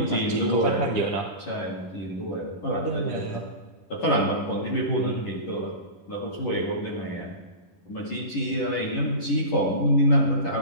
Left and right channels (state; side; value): late; right; 10 ms